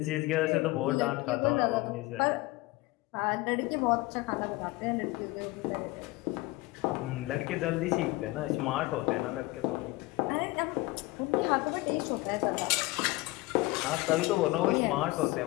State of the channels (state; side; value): quieter; right; 20.6 dB